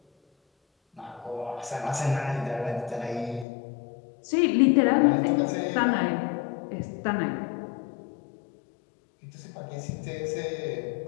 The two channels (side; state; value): right; drops out; at 3.5 s